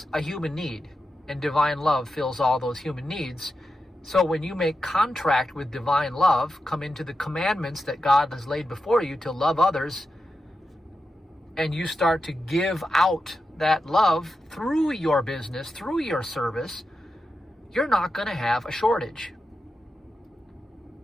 a human need, and divine love fills all those human needs. So when you make contract with divine love, come into the commandments that God has laid before you to love others, and you start to give out that love through your business, through your service, you're not going to have a shortage.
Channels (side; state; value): both; normal; correlation 0.89